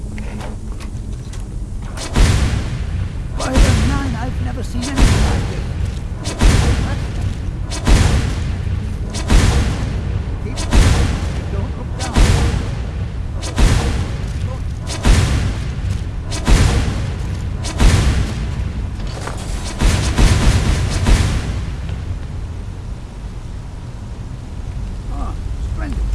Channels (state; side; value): identical; both; correlation 1.00